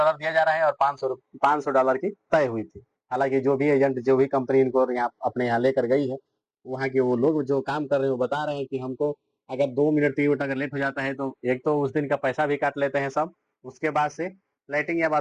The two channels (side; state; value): both; identical; correlation 1.00